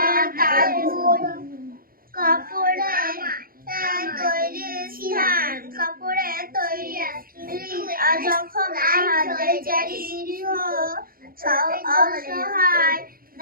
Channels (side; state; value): left; late; 0.42 ms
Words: কাপড়ে তৈরি স্থান, কাপড়ে তৈরি যখন আহাদের চারি নিরীহ অসহায়